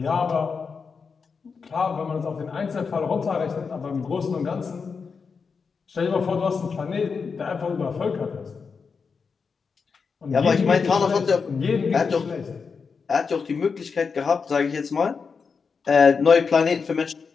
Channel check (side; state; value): right; quieter; 5.4 dB